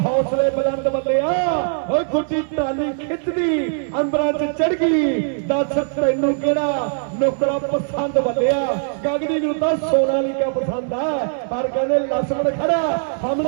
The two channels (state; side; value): silent; left; 65 dB below the other